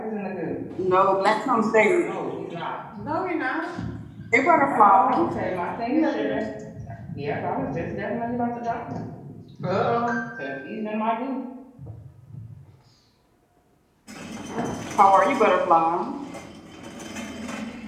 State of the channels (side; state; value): both; identical; correlation 1.00